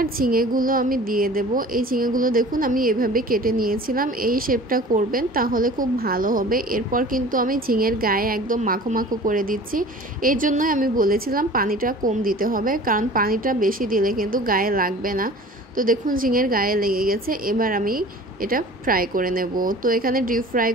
ঝিঙেগুলো আমি দিয়ে দেব। এই ঝিঙেগুলো দেখুন আমি এভাবে কেটে নিয়েছিলাম। এই শেপটা করবেন, তাহলে খুব ভালো হবে। এরপর কিন্তু আমি ঝিঙের গায়ে একদম মাখো মাখো করে দিচ্ছি। এই জন্যই আমি বলেছিলাম পানিটা কম দিতে হবে, কারণ পানিটা বেশি দিলে কিন্তু গায়ে লাগবে না। তো দেখুন ঝিঙের গায়ে লেগে গেছে। এবার আমি এটা ফ্রাই করে নেব। তো এখানে ডিপ ফ্রাই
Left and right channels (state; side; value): normal; both; correlation 0.43